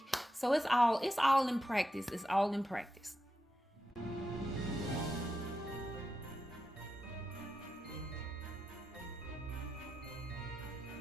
So it's all in practice. It's all in practice.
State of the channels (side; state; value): both; normal; correlation 0.88